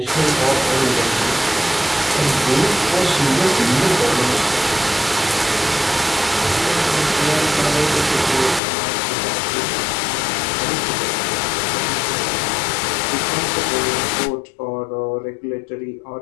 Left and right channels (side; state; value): right; drops out; at 8.6 s